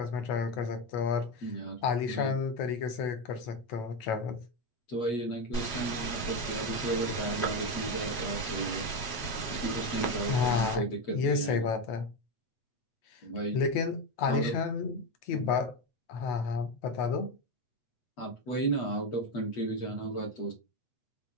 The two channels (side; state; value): right; late; 8.2 ms